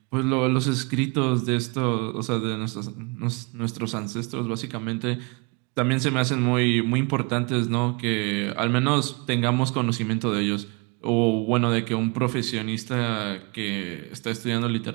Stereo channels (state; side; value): quieter; left; 30.1 dB